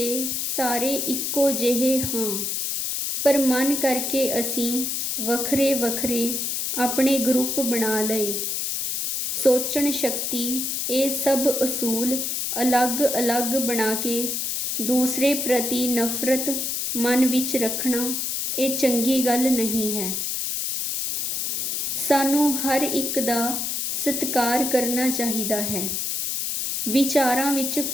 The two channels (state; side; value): noise; left; hiss, 1 dB below the sound